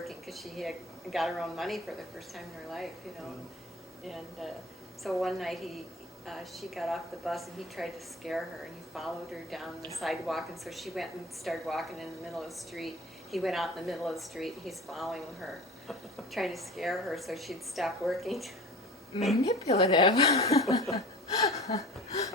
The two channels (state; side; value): normal; both; correlation 0.39